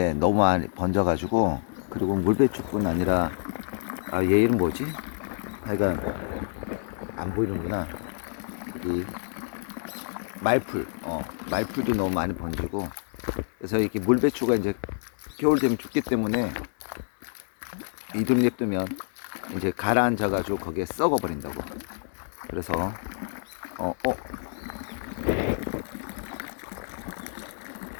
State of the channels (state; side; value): silent; right; 60 dB below the other